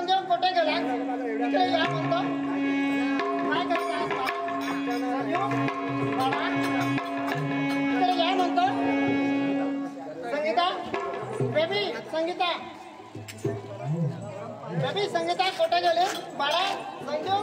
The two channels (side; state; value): both; identical; correlation 1.00